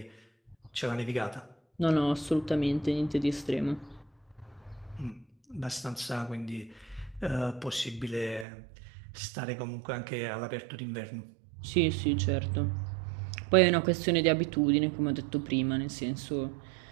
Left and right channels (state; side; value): drops out; left; at 8.5 s